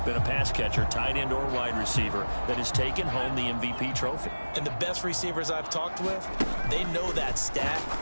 been a pass catcher, tight end, or wide receiver that has taken home the MVP trophy. And the best receivers I've talked with, they know that stat,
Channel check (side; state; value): both; inverted; correlation -1.00